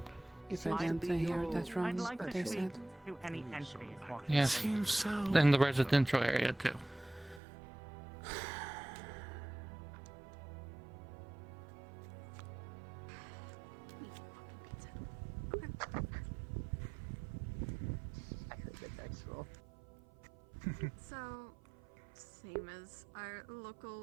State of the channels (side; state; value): left; drops out; at 7.4 s